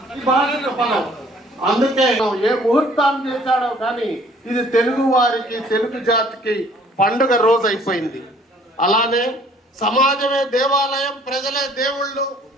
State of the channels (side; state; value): both; normal; correlation 0.57